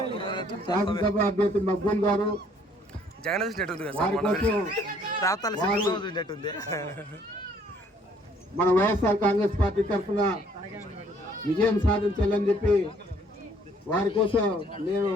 శాసనసభ అభ్యర్థి మక్బూల్ గారు మన వైఎస్ఆర్ కాంగ్రెస్ పార్టీ తరఫున విజయం సాధించాలని చెప్పి వారి కోసం నేను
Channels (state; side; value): normal; both; correlation 0.62